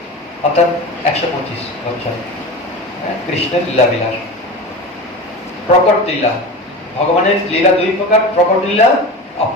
অর্থাৎ 125 বছর কৃষ্ণের লীলা বিলাস। প্রকট লীলা, ভগবানের লীলা 2 প্রকার, প্রকট লীলা,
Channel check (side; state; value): both; normal; correlation 0.29